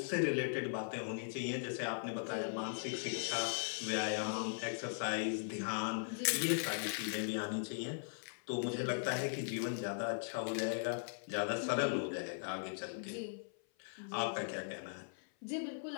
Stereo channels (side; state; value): right; silent; 52 dB below the other